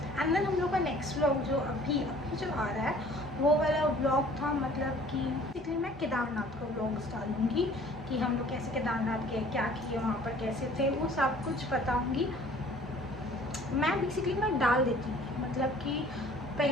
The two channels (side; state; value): both; normal; correlation 0.52